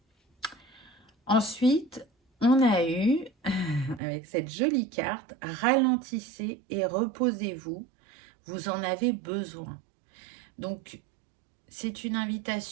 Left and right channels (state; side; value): drops out; left; at 4.0 s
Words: Ensuite, on a eu, avec cette jolie carte, ralentissez et reposez-vous, vous en avez besoin. Donc, c'est une